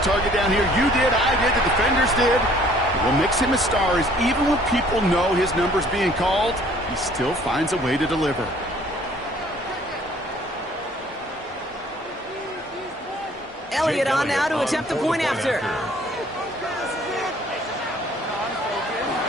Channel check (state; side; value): normal; both; correlation 0.57